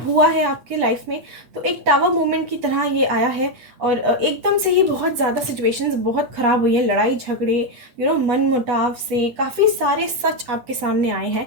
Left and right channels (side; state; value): left; late; 8.2 ms